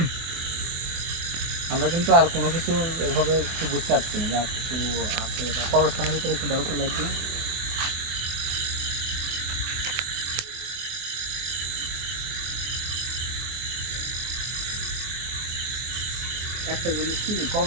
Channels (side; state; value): left; late; 24 ms